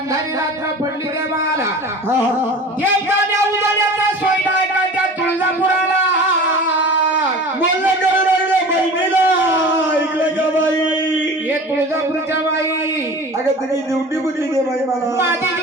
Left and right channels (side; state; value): both; normal; correlation 0.38